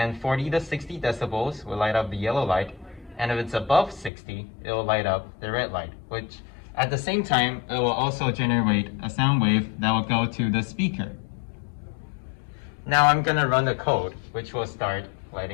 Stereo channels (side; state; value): right; drops out; at 4.1 s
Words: 40 to 60 decibels will light up the yellow light And if it's above 60, it will light up the red light, which at the same time, it will also generate a sound wave that will go to the speaker. Now I'm gonna run the code, which will start